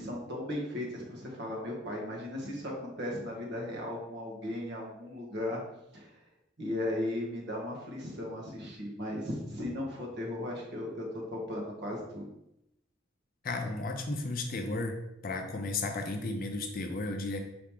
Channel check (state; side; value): normal; both; correlation 0.55